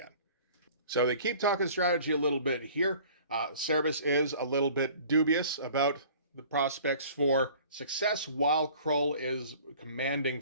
So they keep talking strategy a little bit here. Cerebus is a little bit dubious about the prospects for success while Krull is commanding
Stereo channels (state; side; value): inverted; both; correlation -0.49